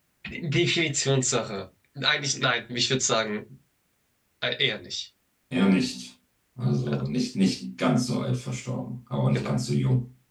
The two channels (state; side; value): identical; both; correlation 1.00